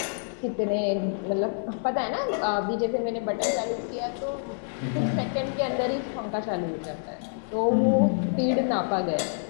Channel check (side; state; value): right; silent; 60 dB below the other